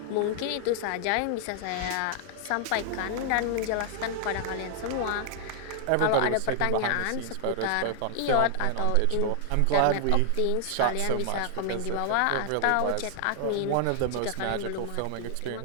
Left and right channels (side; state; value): both; different; correlation 0.00